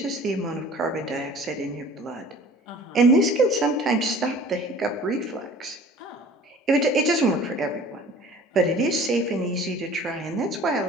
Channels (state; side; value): normal; both; correlation 0.46